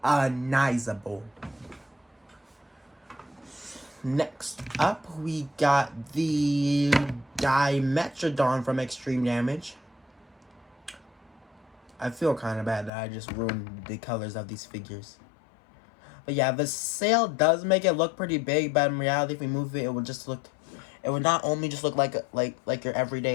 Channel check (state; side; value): drops out; right; at 12.9 s